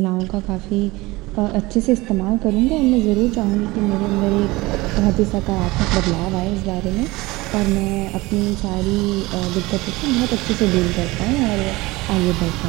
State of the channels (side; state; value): left; quieter; 21.3 dB